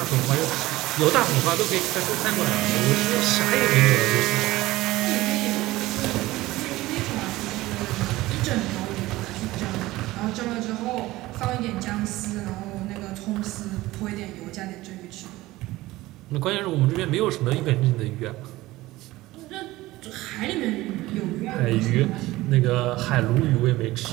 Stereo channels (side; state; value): left; quieter; 18.1 dB